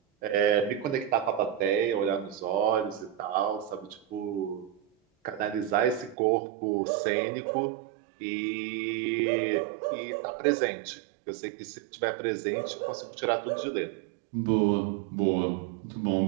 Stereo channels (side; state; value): left; drops out; at 6.2 s